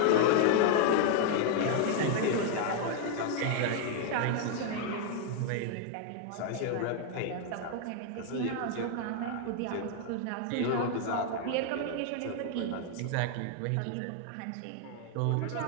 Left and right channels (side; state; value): both; different; correlation 0.00